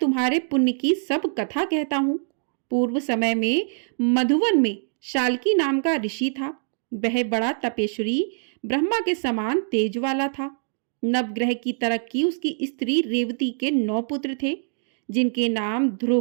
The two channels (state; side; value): silent; left; digital silence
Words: पुण्य की सब कथा कहता हूँ। पूर्व समय में मधुवन में शाल्की नाम का ऋषि था। वह बड़ा तपेश्वरी, ब्रह्मा के समान तेज वाला था। नवग्रह की तरक्की उसकी स्त्री रेवती के 9 पुत्र थे, जिनके नाम